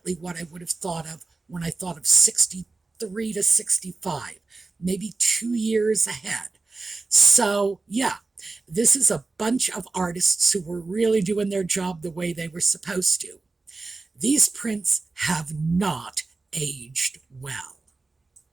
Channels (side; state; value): left; quieter; 3.6 dB